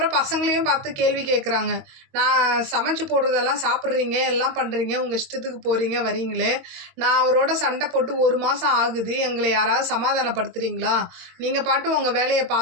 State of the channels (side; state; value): left; late; 22 ms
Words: பசங்களையும் பார்த்து கேள்வி கேட்குறாங்க. நான் சமைச்சு போடுறதெல்லாம் சாப்பிட்றீங்க, எல்லாம் பண்ணுறீங்க, உங்கள் இஷ்டத்துக்கு போகிறீங்க வரீங்களே, நான் அவரோட சண்டை போட்டு 1 மாதம் ஆகுது, எங்களை யாராவது சமாதானப்படுத்துகிறீங்களா, நீங்கள் பாட்டு உங்கள் வேலையை